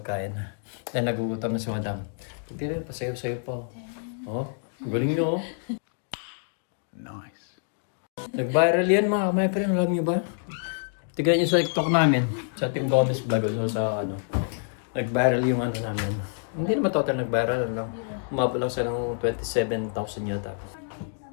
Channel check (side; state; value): right; silent; digital silence